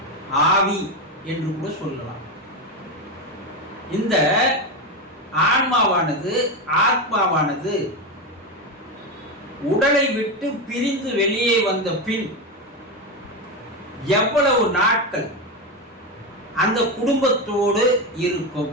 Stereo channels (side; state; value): both; normal; correlation 0.14